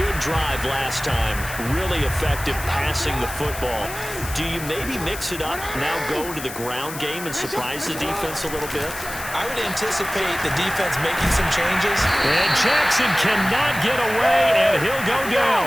drive last time. Really effective passing the football. Do you maybe mix it up, now go to the ground game and surprise the defense a little bit? I would anticipate the defense making some changes. And Jackson cannot get away, and he'll go down.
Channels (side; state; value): left; noise; hiss, 11 dB below the sound